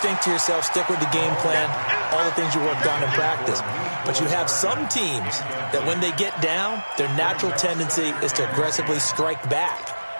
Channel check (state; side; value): inverted; both; correlation -1.00